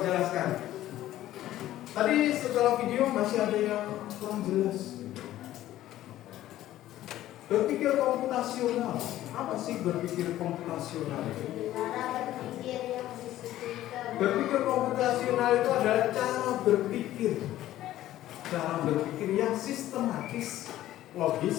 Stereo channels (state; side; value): quieter; right; 14.0 dB